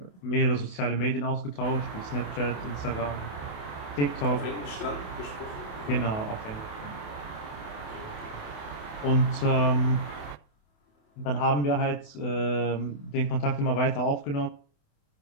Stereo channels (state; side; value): late; right; 28 ms